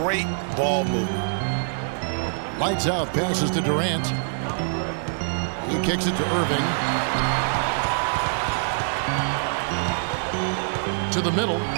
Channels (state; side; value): silent; left; digital silence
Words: ball movement. Lights out, passes to Durant. He kicks it to Irving. To the middle.